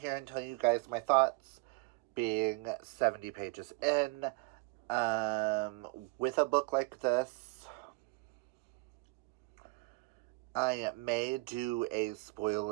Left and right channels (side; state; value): left; quieter; 25.1 dB